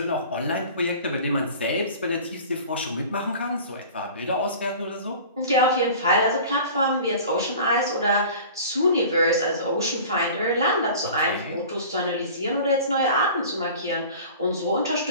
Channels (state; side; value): inverted; both; correlation -0.41